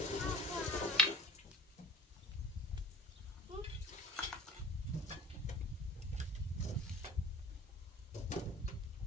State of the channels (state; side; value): normal; both; correlation 0.47